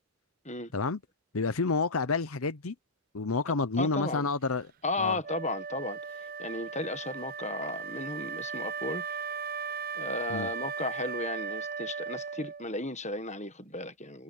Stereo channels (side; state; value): both; normal; correlation -0.06